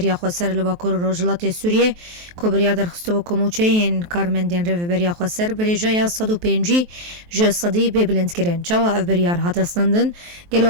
خسر لباکور روجلات سوریه کو بریا در خستو کوموچه این کارمندین رو بریا خسر بریجای 105 ج صدی ببلند کرن چاو اف بریار هاتستندن گلو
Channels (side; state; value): left; late; 23 ms